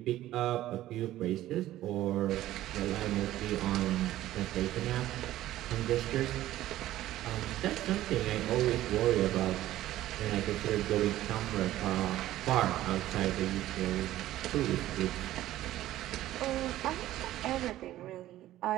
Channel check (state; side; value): quieter; left; 14.4 dB